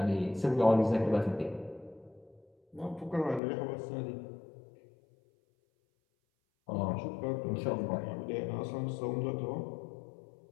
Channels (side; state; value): right; drops out; at 3.4 s